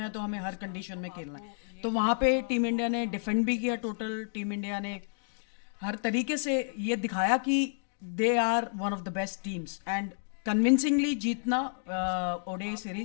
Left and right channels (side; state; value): right; silent; digital silence